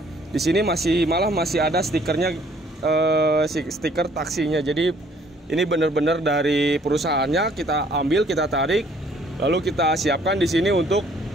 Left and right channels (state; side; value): normal; both; correlation 0.60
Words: di sini masih ada stikernya, stiker taksinya. Jadi ini benar-benar dari perusahaannya kita ambil, kita tarik, lalu kita siapkan di sini untuk